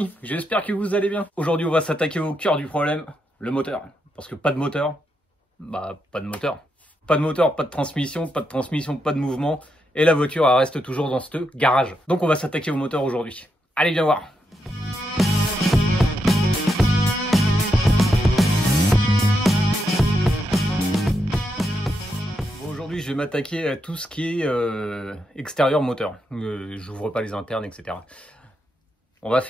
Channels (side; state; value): both; normal; correlation 0.82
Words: j'espère que vous allez bien. Aujourd'hui on va s'attaquer au cœur du problème, le moteur. Parce que pas de moteur, bah pas de moteur. Pas de moteur, pas de transmission, pas de mouvement. Et la voiture elle reste toujours dans ce garage. Donc on va s'attaquer au moteur aujourd'hui. Allez viens voir. Aujourd'hui je vais m'attaquer à tout ce qui est extérieur moteur. J'ouvre pas les internes, etc. On va